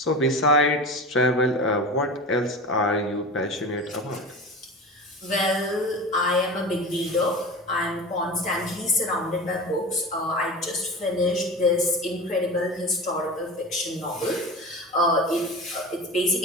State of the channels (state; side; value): normal; both; correlation 0.30